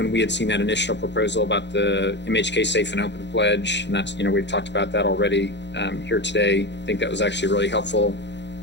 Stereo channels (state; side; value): late; right; 0.51 ms